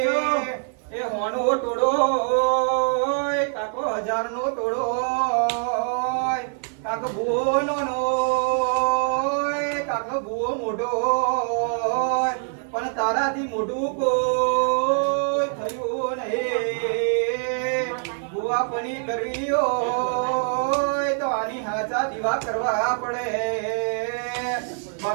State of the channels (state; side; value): silent; left; digital silence